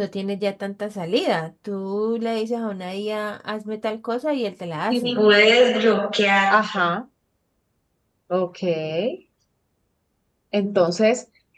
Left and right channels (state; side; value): identical; both; correlation 1.00